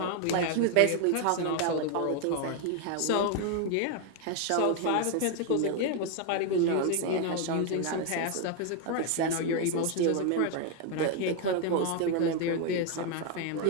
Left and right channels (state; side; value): different; both; correlation 0.01